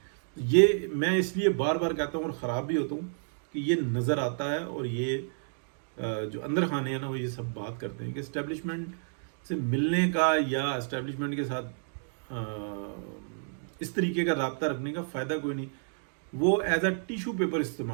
یہ میں اس لیے بار بار کہتا ہوں اور خراب بھی ہوتا ہوں کہ یہ نظر آتا ہے, اور یہ جو اندر خانے ہیں نا وہ یہ سب بات کرتے ہیں کہ اسٹیبلشمنٹ سے ملنے کا یا اسٹیبلشمنٹ کے ساتھ اس طریقے کا رابطہ رکھنے کا فائدہ کوئی نہیں. وہ ایز اے ٹیشو پیپر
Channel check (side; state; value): left; silent; digital silence